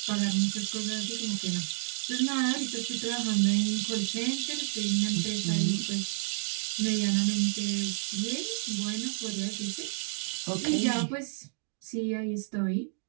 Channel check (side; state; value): left; silent; digital silence